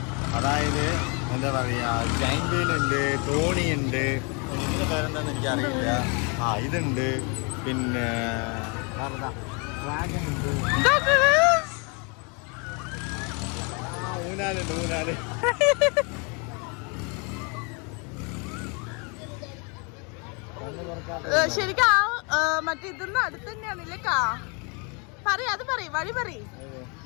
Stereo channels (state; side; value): quieter; right; 33.5 dB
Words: അതായത് എന്താ പറയുക, ജൈന്റ് വീൽ ഉണ്ട്, തോണി ഉണ്ട്, ഇതിൻ്റെ പേരെന്താണെന്ന് എനിക്കറിയില്ല. ഇതുണ്ട്, പിന്നെ ഡ്രാഗൺ ഉണ്ട്, ഊനാലുണ്ട്, ഊനാല്. ശരിക്കും മറ്റേ ഇതൊന്നും അടുത്ത് തന്നെയാണല്ലേ കാ? അത് വഴി പറയും.